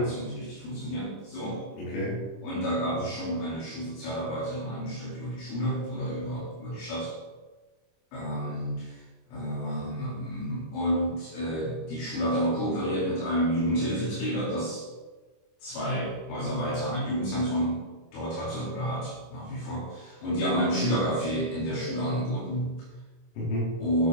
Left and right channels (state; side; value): late; right; 25 ms